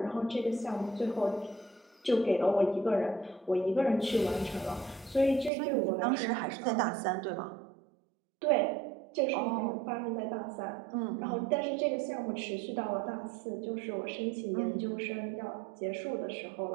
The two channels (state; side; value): drops out; left; at 5.5 s